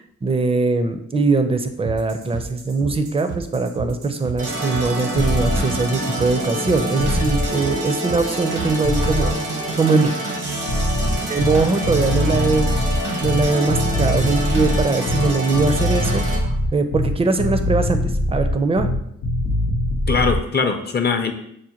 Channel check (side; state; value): both; normal; correlation 0.63